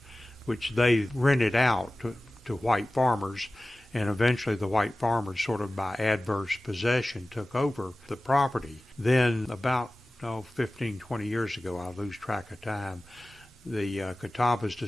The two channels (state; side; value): normal; both; correlation 0.97